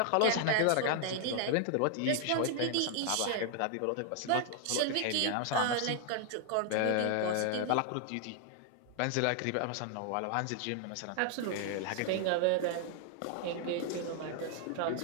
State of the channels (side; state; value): both; different; correlation 0.00